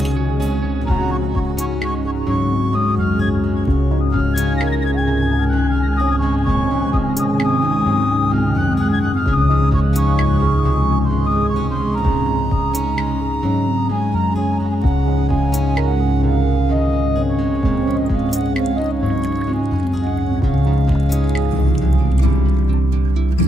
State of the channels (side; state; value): both; normal; correlation 0.83